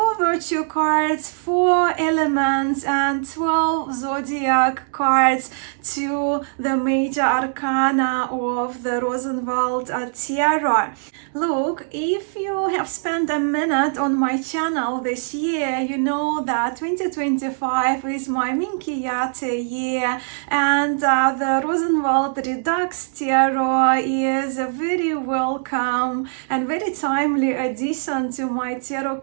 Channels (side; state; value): left; silent; digital silence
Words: virtue cards, 4 elements and 12 zodiac cards to the major arcana of the Rosenwald Tarot. Look, if you have spent a minute on my channel this year, you know that 2025 is my Minchiate year, and the Rosenwald Redux Tarot is a very welcome and very timely addition to my tarot